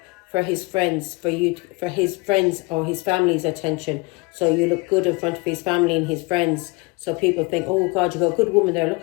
for his friends, for his friends or his family's attention. So you look good in front of his family and his friends. So people think, oh God, you got a good woman there.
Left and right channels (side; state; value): right; quieter; 26.5 dB